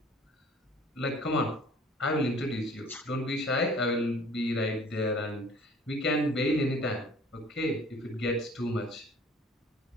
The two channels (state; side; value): normal; both; correlation 0.50